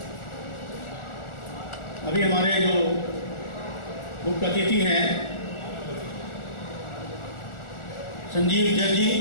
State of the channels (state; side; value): late; right; 1.4 ms